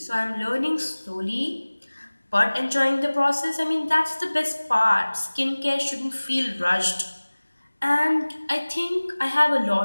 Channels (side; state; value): both; inverted; correlation -1.00